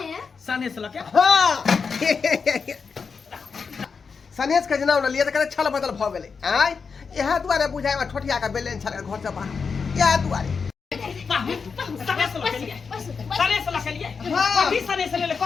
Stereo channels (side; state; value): right; quieter; 5.4 dB